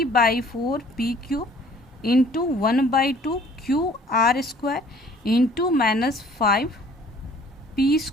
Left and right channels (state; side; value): normal; both; correlation 0.54